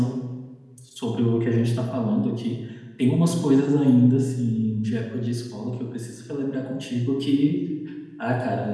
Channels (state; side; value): identical; both; correlation 1.00